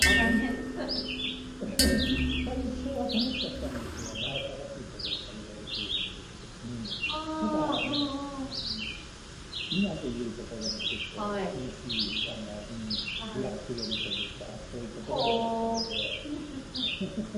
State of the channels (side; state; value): both; identical; correlation 1.00